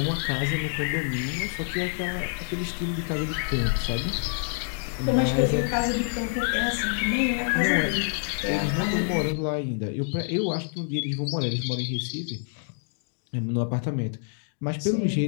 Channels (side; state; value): right; silent; digital silence